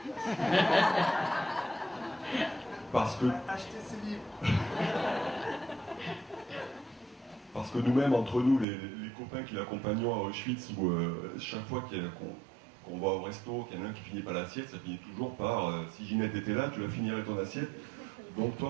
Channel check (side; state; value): left; drops out; at 8.7 s